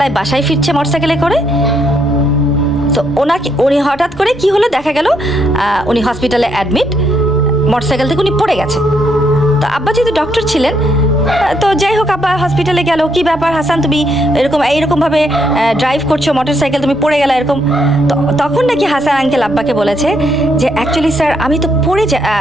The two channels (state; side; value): noise; right; rumble, 21 dB below the sound